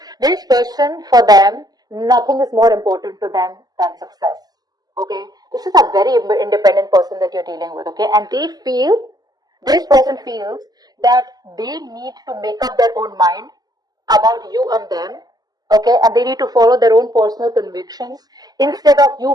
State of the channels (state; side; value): late; left; 0.19 ms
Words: This person, for them, nothing is more important to them than success. Okay, this is a very independent person that you're dealing with. Okay, and this person feels that they need to make up their own mind about you and them. Okay, and they need to follow their own personal convictions instead of